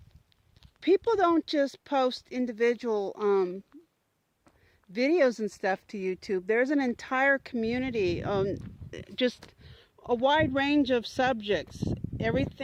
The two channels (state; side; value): identical; both; correlation 1.00